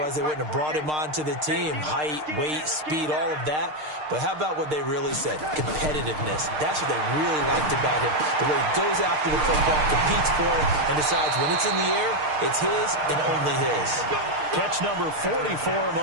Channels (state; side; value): late; left; 6.6 ms